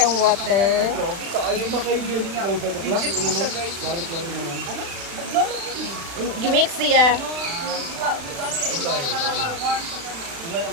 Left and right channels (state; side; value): late; left; 36 ms